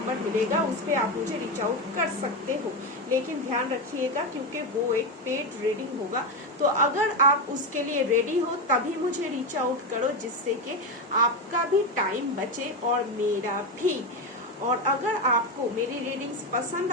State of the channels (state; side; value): normal; both; correlation 0.13